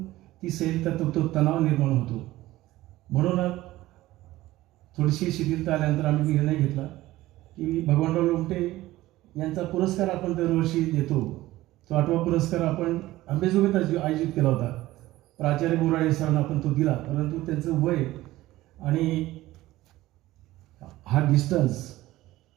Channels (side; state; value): left; quieter; 16.8 dB